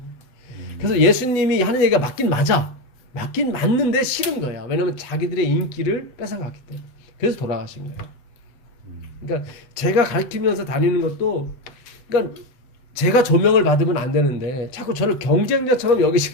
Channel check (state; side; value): late; right; 8.3 ms